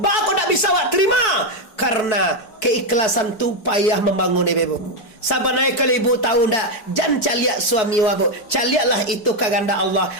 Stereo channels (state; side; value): late; right; 4.6 ms